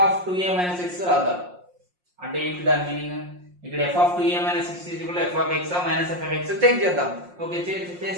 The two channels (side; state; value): left; late; 5.6 ms